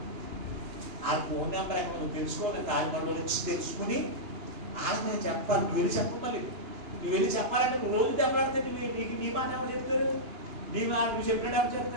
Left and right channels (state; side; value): late; left; 2.9 ms